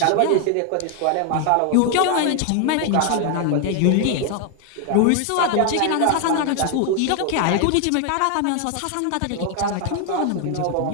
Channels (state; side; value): different; both; correlation 0.00